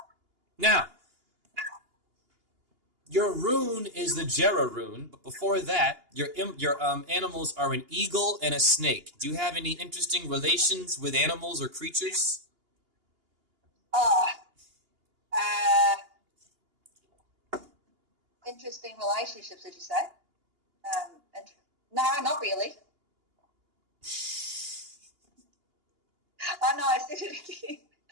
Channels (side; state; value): left; late; 2.8 ms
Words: Now, your rune is the Jera rune, but before that, your animals are an eagle and a snake. Do you have any interesting relations with animals or creatures? Interesting relationships, did you say? No, not really. Oh no, I said it again.